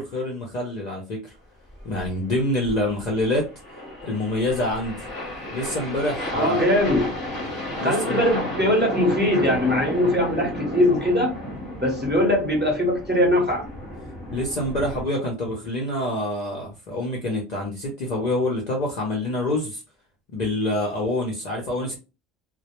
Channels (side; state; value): both; normal; correlation 0.33